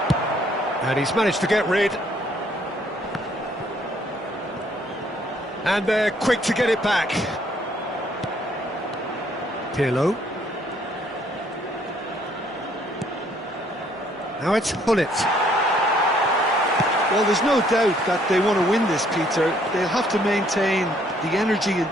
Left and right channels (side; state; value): both; normal; correlation 0.65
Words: And he's managed to get rid. And they're quick to get it back. Pirlo. Now it's Gullit. Well, there's no doubt that they want to win this, Peter. They'll have to maintain the energy and